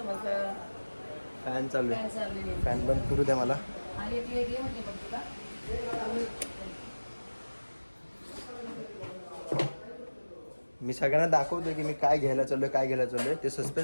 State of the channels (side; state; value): both; inverted; correlation -1.00